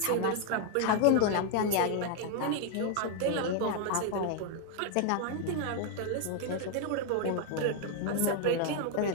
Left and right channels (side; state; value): both; different; correlation 0.00